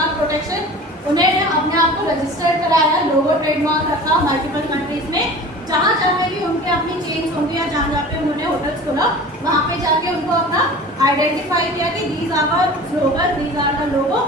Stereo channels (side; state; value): both; normal; correlation 0.39